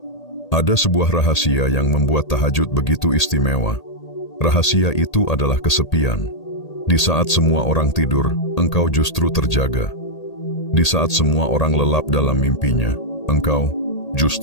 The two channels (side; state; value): right; late; 1.8 ms